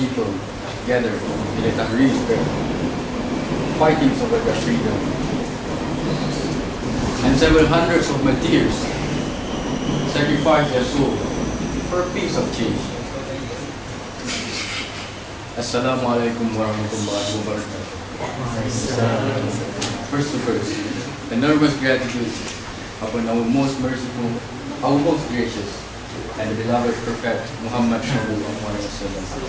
gathered in the Tahrir Square, fighting for their freedom, and several hundreds of martyrs sacrificed their soul for a piece of change. Assalamu alaikum warahmatullahi wabarakatuh. First, enormous gratitude upon our most merciful, our most gracious, and the beloved Prophet Muhammad sallallahu alaihi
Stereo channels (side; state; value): both; identical; correlation 1.00